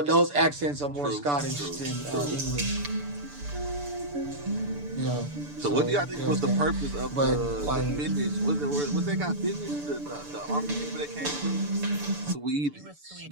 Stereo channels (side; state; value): left; late; 6.9 ms